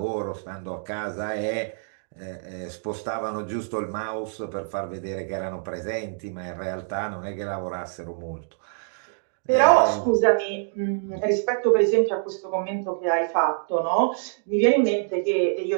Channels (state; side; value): silent; left; digital silence